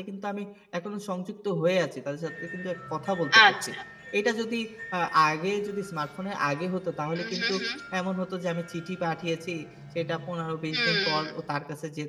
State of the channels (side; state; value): both; identical; correlation 1.00